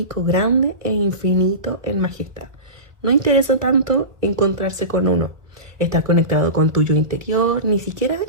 grande e infinito en majestad. No interesa tanto encontrarse con uno, estar conectado con tu yo interior, ni siquiera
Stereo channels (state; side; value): late; left; 1.4 ms